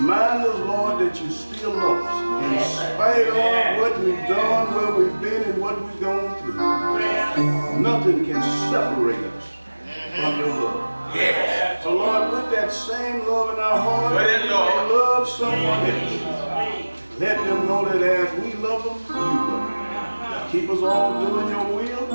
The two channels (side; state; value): both; inverted; correlation -1.00